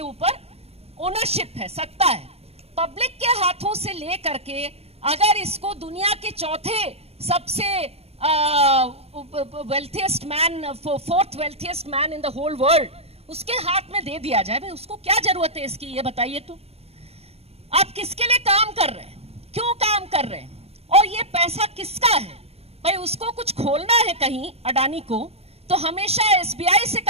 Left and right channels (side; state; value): left; late; 0.29 ms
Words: ऊपर ओनरशिप है, सत्ता है। पब्लिक के हाथों से ले करके अगर इसको दुनिया के चौथे सबसे wealthiest man, fourth wealthiest man in the whole world, उसके हाथ में दे दिया जाए, भाई उसको क्या जरूरत है इसकी, ये बताइए। तो आप किसके लिए काम कर रहे हैं, क्यों काम कर रहे हैं, और ये पैसा किसका है? भाई उसको कुछ खोलना है कहीं अडानी को, तो हमेशा एसबीआई से